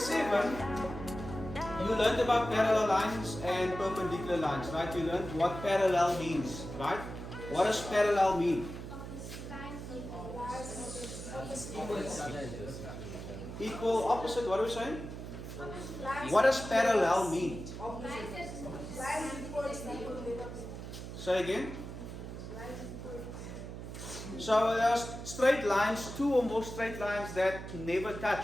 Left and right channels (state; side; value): noise; right; hum, 9 dB below the sound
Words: you learned about parallel lines and perpendicular lines, right? You learned what parallel means, right? What does parallel mean? Equal, opposite, what are we saying? What does parallel mean? Say again. So there's straight lines, two or more straight lines that never touch